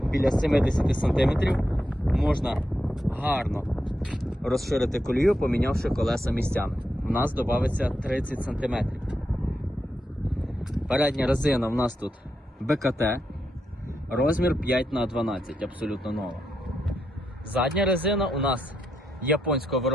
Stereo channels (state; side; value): normal; both; correlation 0.83